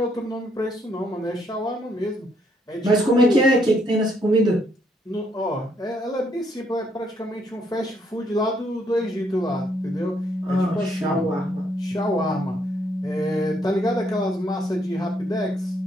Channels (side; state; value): both; normal; correlation 0.71